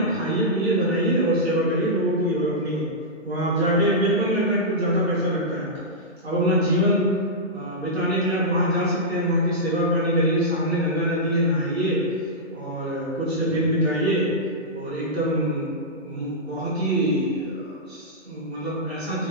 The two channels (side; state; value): both; normal; correlation -0.10